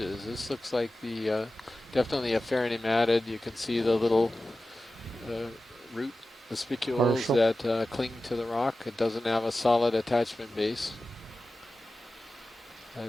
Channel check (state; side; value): normal; both; correlation 0.95